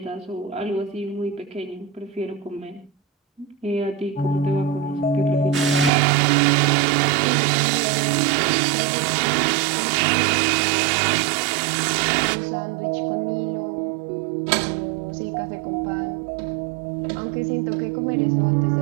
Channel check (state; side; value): drops out; left; at 5.9 s